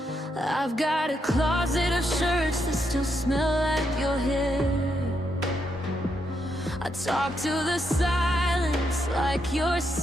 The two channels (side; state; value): both; normal; correlation 0.80